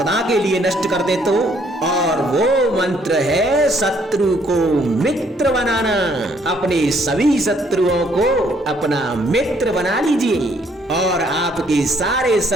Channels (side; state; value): both; normal; correlation 0.66